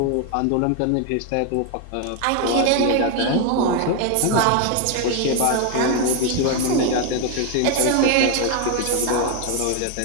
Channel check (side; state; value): both; different; correlation 0.01